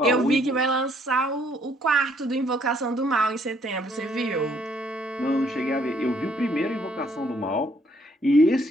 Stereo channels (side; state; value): both; normal; correlation 0.66